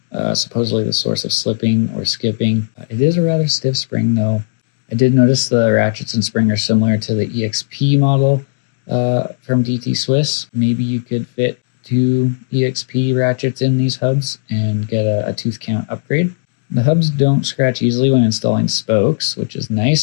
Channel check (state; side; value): silent; right; digital silence